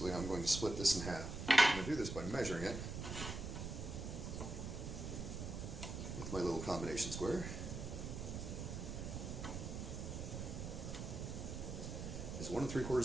I'm going to split this in half. I'm going to do this by measuring it with my little combination square. It's 1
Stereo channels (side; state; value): right; noise; rumble, 5 dB below the sound